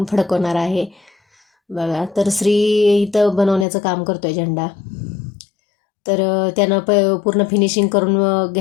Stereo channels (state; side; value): drops out; right; at 3.7 s